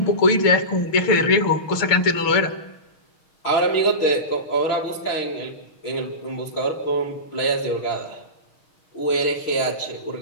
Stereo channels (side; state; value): right; late; 6.4 ms